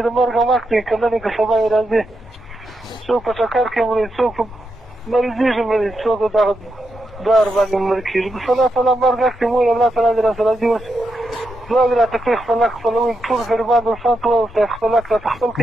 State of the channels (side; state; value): both; normal; correlation 0.84